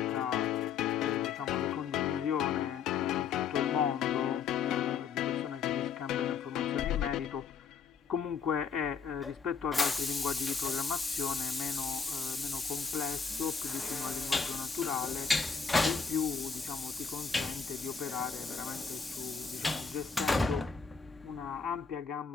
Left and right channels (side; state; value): right; quieter; 6.0 dB